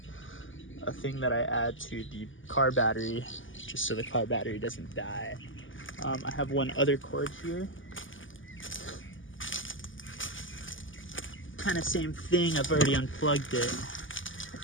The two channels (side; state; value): right; late; 0.57 ms